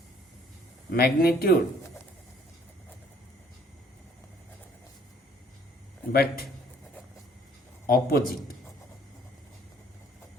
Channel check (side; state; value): both; normal; correlation 0.60